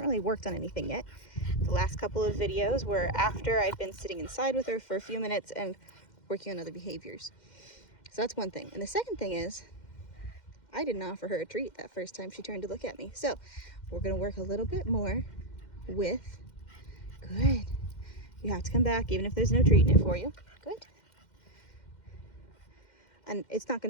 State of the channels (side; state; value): right; late; 2.1 ms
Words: really worked on anything yet. The last couple of videos were after I'd been sitting inside with her for a few minutes and working on other behaviors. So that's one thing. And the second thing is, I didn't offer her a treat that first time she turned to look at me. So we're gonna work a little bit more with, good. You have to come back even if there's no treat in it for you. Good. And it's not